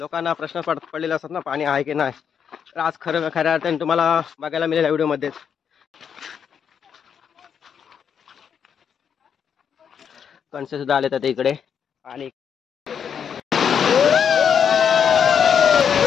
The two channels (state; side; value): quieter; right; 7.6 dB